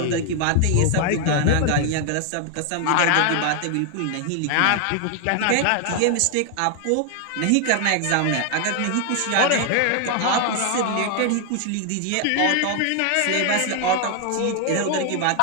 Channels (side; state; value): both; different; correlation 0.00